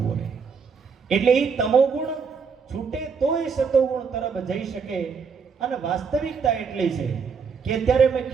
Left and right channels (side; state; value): left; quieter; 5.7 dB